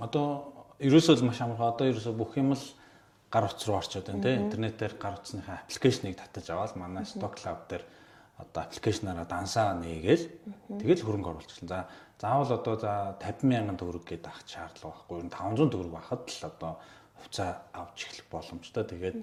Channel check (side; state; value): both; identical; correlation 1.00